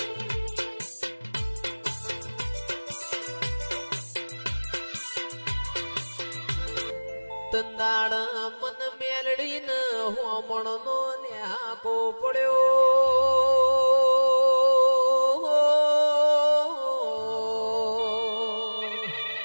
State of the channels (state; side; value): inverted; both; correlation -1.00